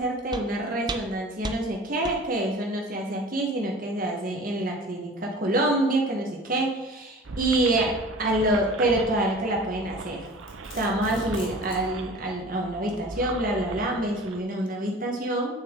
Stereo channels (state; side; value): normal; both; correlation 0.42